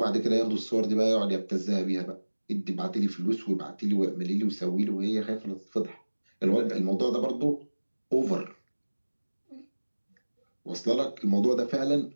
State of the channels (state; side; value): inverted; both; correlation -1.00